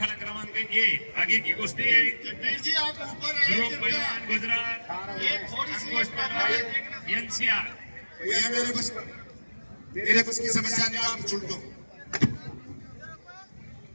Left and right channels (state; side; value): inverted; both; correlation -1.00